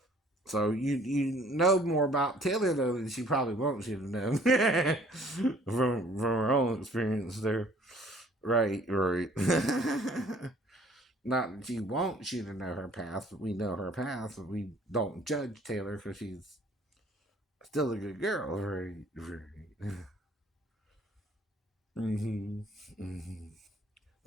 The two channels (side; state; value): both; normal; correlation 0.56